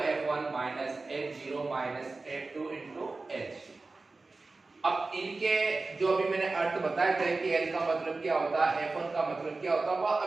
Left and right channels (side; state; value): left; quieter; 3.6 dB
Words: minus F0 minus F2 into H। अब इनके जो अभी मैंने अर्थ बताए थे कि L का मतलब क्या होता है, F1 का मतलब क्या होता है, वह